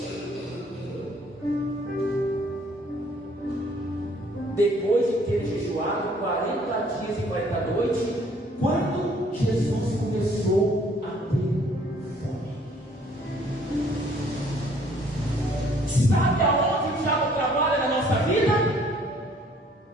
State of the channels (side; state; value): both; normal; correlation 0.60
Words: Depois de ter jejuado 40 dias e 40 noites, quando Jesus começou a ter fome. Sabe aonde o diabo trabalha na nossa vida?